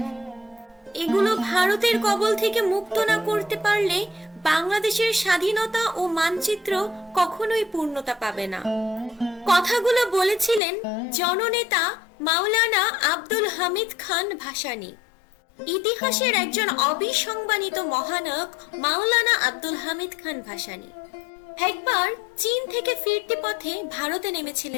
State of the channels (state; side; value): drops out; right; at 10.6 s